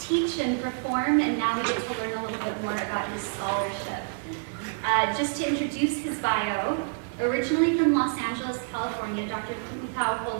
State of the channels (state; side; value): silent; left; 57 dB below the other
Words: and perform, and now we get to learn a little bit more about his scholarship. Just to introduce his bio, originally from Los Angeles, California, Dr. Tuʻutau